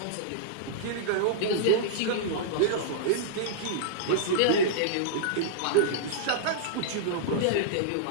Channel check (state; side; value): different; both; correlation -0.02